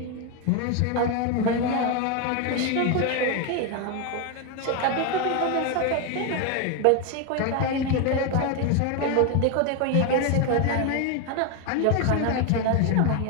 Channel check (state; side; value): different; both; correlation 0.02